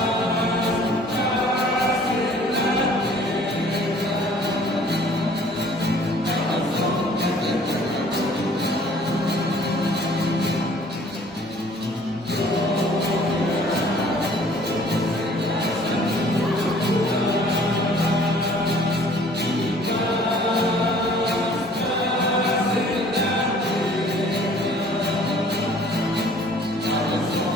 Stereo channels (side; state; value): both; normal; correlation 0.54